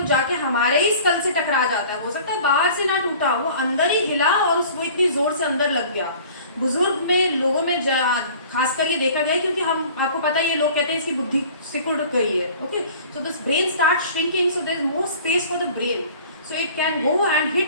जाके हमारे ही स्कल से टकरा जाता है। हो सकता है बाहर से ना टूटा, वो अंदर ही हिला और वो इतनी जोर से अंदर लग गया। बुजुर्ग में, लोगों में खासकर ये देखा गया है, क्योंकि हम, आपको पता है ये लोग कहते हैं इसकी बुद्धि सिकुड़ गई है, okay. So this brain start shrinking, so there is more space for the brain, so it can go and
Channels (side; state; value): both; inverted; correlation -0.47